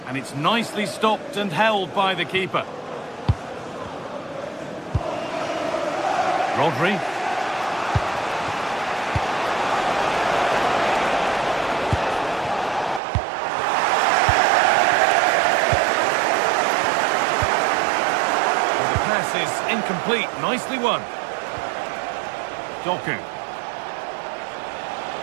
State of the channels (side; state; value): left; drops out; at 13.0 s